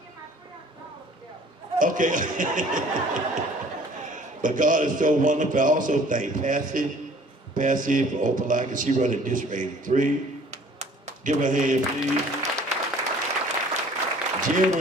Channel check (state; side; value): normal; both; correlation 0.53